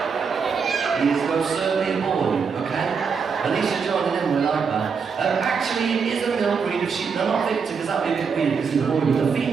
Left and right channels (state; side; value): quieter; left; 5.8 dB